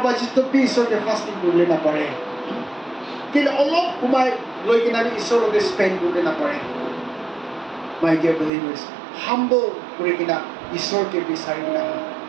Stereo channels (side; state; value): left; drops out; at 8.5 s